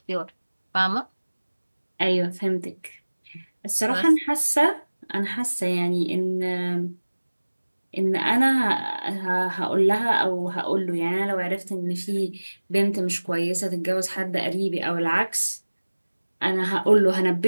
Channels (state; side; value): inverted; both; correlation -1.00